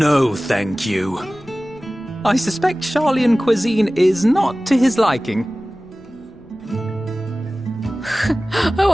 thank you." I suspect Charlian cuisine is not to his liking. Oh,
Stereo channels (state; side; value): normal; both; correlation 0.97